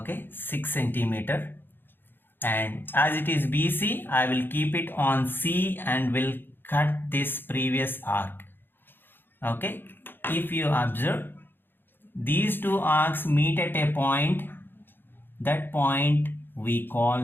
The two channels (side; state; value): right; late; 0.099 ms